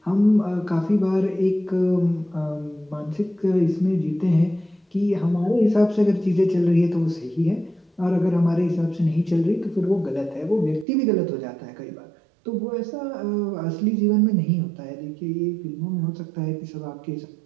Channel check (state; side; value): drops out; left; at 10.9 s